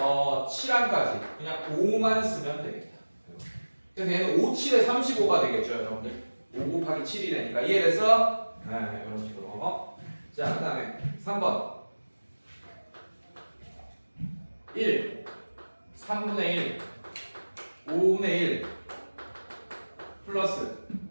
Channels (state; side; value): inverted; both; correlation -1.00